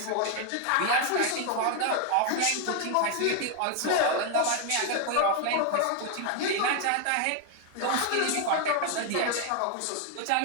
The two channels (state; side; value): different; both; correlation 0.01